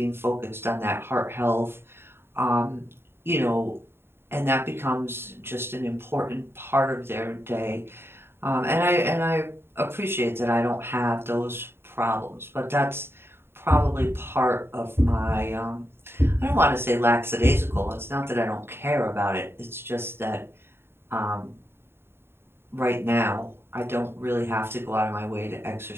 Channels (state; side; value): late; left; 0.11 ms